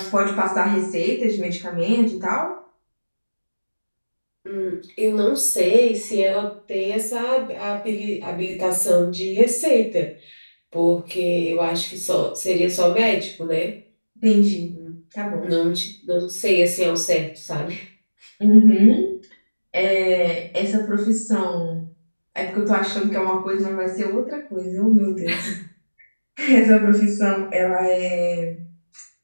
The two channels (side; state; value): both; inverted; correlation -1.00